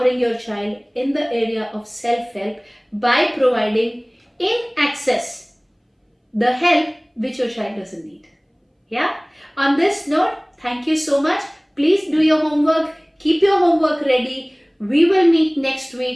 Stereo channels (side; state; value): both; identical; correlation 1.00